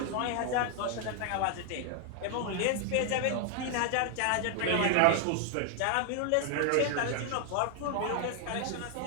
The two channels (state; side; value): different; both; correlation 0.00